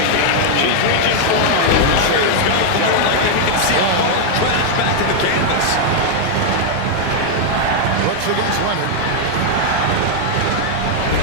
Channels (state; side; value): different; both; correlation 0.00